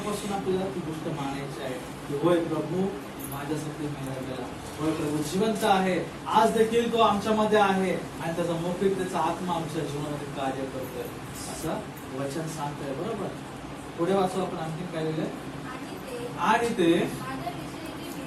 आपल्याला ती गोष्ट मानायची आहे की होय प्रभू माझ्यासाठी मेला गेला, होय प्रभू जिवंत आहे, आज देखील तो आमच्यामध्ये आहे आणि त्याचा मोकळीकतेचा आत्मा आमच्या जीवनामध्ये कार्य करतोय असं वचन सांगतोय. बरोबर. पुढे वाचू आपण आणखी काय लिहिलंय. आणि ते माझ्याविषयी जी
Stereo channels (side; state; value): both; identical; correlation 1.00